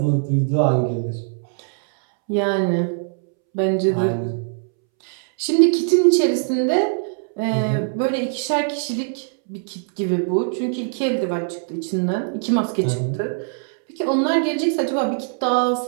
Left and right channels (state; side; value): silent; left; 65 dB below the other